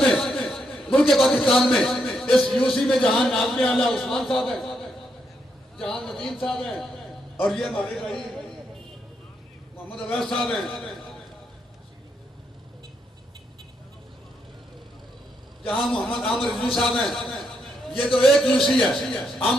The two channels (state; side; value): normal; both; correlation 0.79